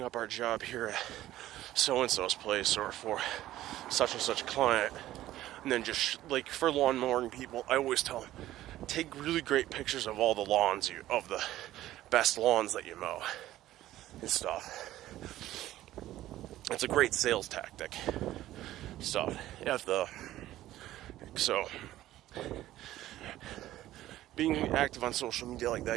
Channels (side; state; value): left; quieter; 14.5 dB